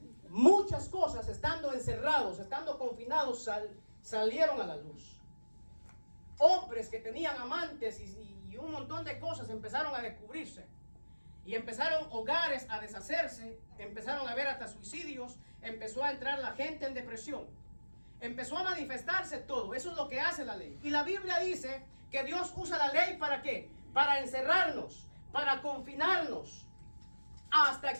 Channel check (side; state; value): both; inverted; correlation -1.00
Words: Muchas cosas, estando encerrados, estando confinados, salieron a la luz. Hombres que tenían amantes y un montón de cosas empezaron a descubrirse. Y empezaron hogares a deshacerse, empezaron a haber hasta suicidios, empezó a entrar la gente en depresión. Empezó a manifestarse todo. Eso es lo que hace la ley. Y la Biblia dice que Dios usa la ley ¿para qué? Para encerrarnos, para confinarnos, hasta